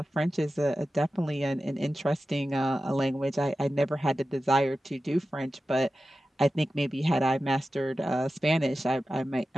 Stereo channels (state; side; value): normal; both; correlation 0.94